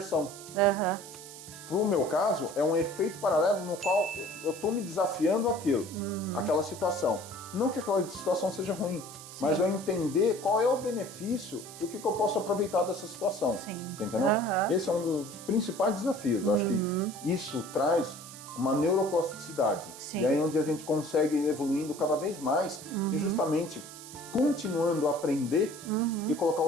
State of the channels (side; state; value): right; noise; hiss, 15 dB below the sound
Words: Pro meu caso, é um efeito paralelo no qual eu tô me desafiando aquela situação. Não que aquela situação seja ruim, mas eu entender qual é o benefício e o que eu posso aproveitar dessa situação. Sim. Você entendeu? Esse é um dos principais desafios. Eu acho que isso traz uma neuroplasticidade. Sim. E aí é onde a gente consegue ir evoluindo cada vez mais e justamente continuando a aprender e colocar